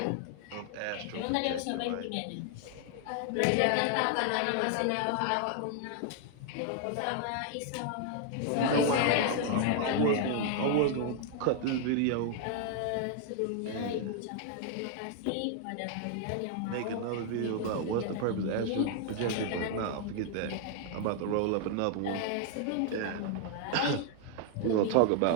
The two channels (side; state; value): both; different; correlation 0.00